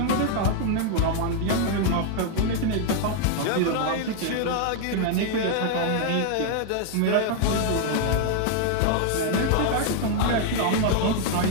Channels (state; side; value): different; both; correlation 0.00